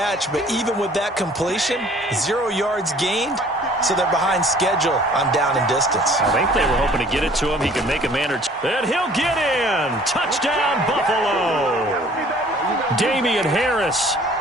but even with that completion, 0 yards gained, so they're behind schedule on down and distance. I think they were hoping to get it to him. He can make a man or two. And he'll get in. Touchdown, Buffalo. Damian Harris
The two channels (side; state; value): both; normal; correlation 0.53